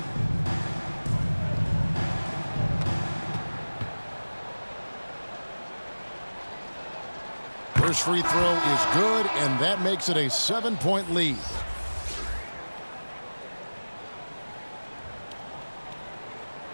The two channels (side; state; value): both; inverted; correlation -1.00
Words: First free throw is good, and that makes it a 7-point lead.